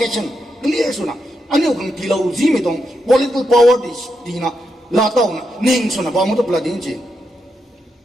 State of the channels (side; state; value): both; normal; correlation 0.84